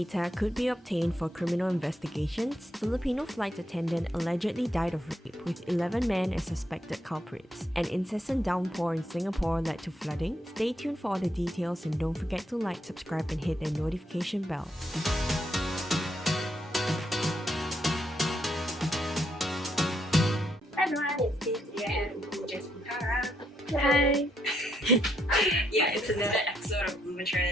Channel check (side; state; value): both; normal; correlation 0.77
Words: could be obtained for criminal investigations. Filipino flight attendant allegedly died of rape, with 11 men as suspected culprits. An incessant downpour in Singapore led to flooding. Stay tuned for all the details and don't forget to like, subscribe and hit the notification bell. Hi everyone, it's Steve here and Jessica. Hi! Yeah, it's another episode of